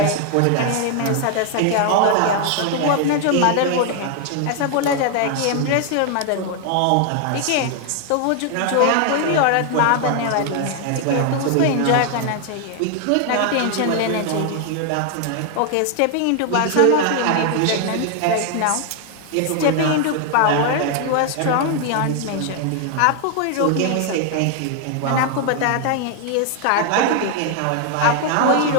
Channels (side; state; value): both; different; correlation 0.00